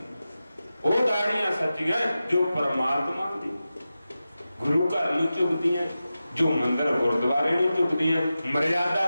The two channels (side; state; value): both; inverted; correlation -0.93